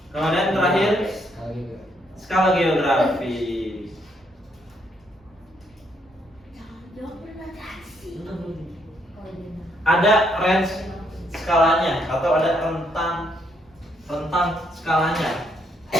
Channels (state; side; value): normal; both; correlation 0.73